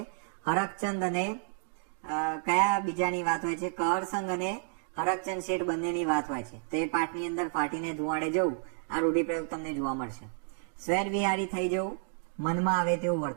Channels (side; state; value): left; silent; 56 dB below the other